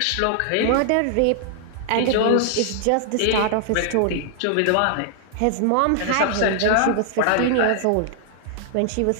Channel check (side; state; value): both; different; correlation 0.00